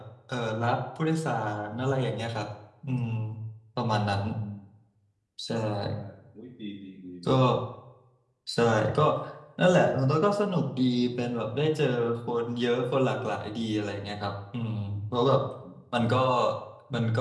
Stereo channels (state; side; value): identical; both; correlation 1.00